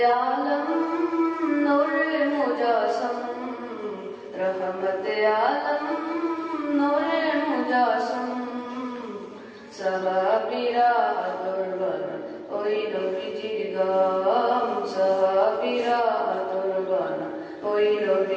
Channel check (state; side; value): identical; both; correlation 1.00